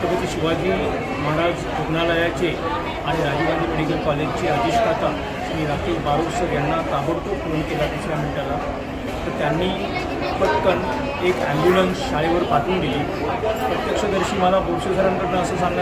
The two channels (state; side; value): identical; both; correlation 1.00